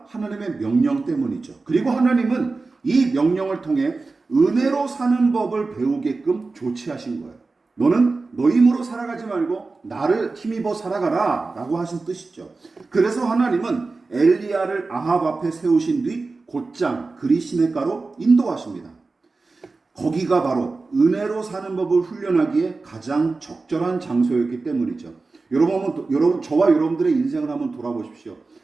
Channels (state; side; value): quieter; left; 3.8 dB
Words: 하나님의 명령 때문이죠. 그리고 하나님은 이 명령을 통해 은혜로 사는 법을 배우게끔 조치하신 거예요. 너는 너 힘으로 살아가지 말고 나를 힘입어 살아가라 라고 하신 뜻이죠. 그래서 하나님은 엘리야를 아합 앞에 세우신 뒤 곧장 그리 시냇가로 인도하십니다. 거기가 바로 은혜로 사는 법을 훈련하기에 가장 적절한 장소였기 때문이죠. 여러분, 저와 여러분들의 인생을 한번 돌아보십시오.